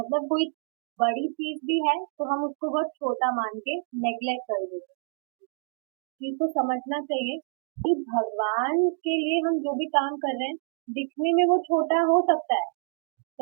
कोई बड़ी चीज भी है तो हम उसको बहुत छोटा मान के नेग्लेक्ट कर देते हैं। इस चीज को समझना चाहिए कि भगवान के लिए हम जो भी काम कर रहे हैं, दिखने में वो छोटा हो सकता है,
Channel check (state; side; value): silent; left; 58 dB below the other